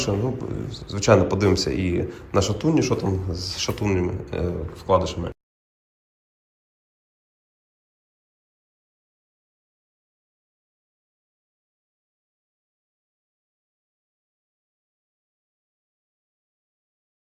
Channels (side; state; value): both; identical; correlation 1.00